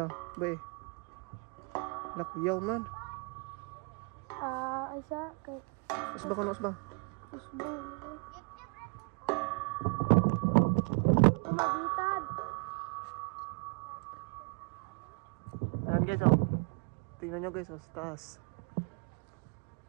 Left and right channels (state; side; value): quieter; left; 33.8 dB